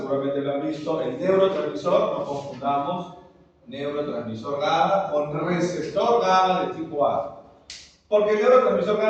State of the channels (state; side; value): identical; both; correlation 1.00